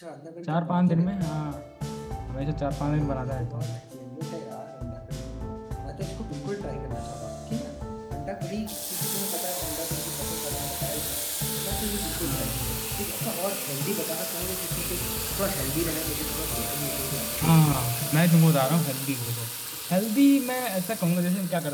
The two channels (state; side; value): identical; both; correlation 1.00